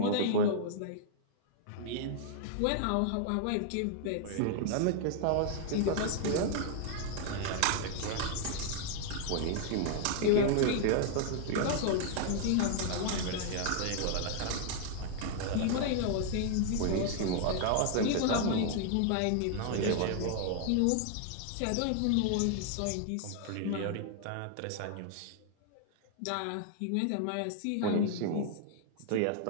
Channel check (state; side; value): different; both; correlation 0.00